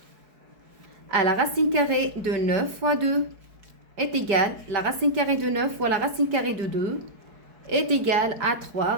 à la racine carrée de 9 fois 2 est égale, la racine carrée de 9 fois la racine carrée de 2 est égale à 3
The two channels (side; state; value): left; late; 4.7 ms